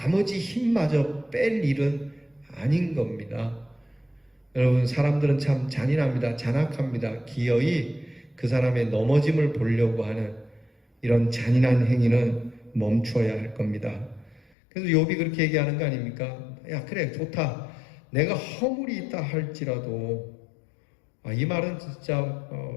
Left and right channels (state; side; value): drops out; right; at 14.4 s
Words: 힘마저 뺄 일은 아닌 겁니다. 여러분 사람들은 참 잔인합니다. 잔악합니다. 기어이 그 사람의 넘어짐을 보려고 하는 이런 잔인한 행위는 멈춰야 할 겁니다. 그래서 욥이 그렇게 얘기하는 거 아닙니까? 야 그래 좋다. 내가 허물이 있다 할지라도 이 말은 진짜